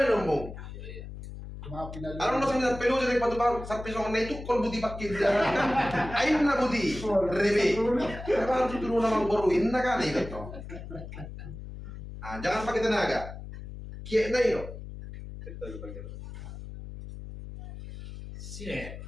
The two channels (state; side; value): noise; left; hum, 11 dB below the sound